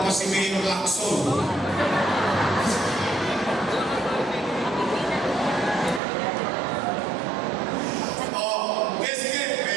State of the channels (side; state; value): left; drops out; at 6.0 s